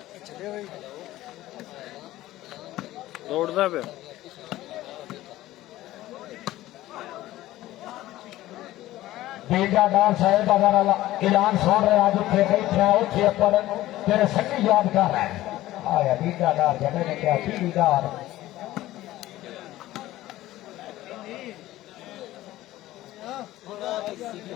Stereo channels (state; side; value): quieter; right; 15.7 dB